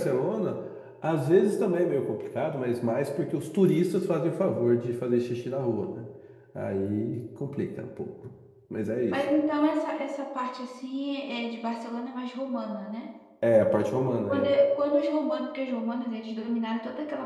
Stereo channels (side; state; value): both; identical; correlation 1.00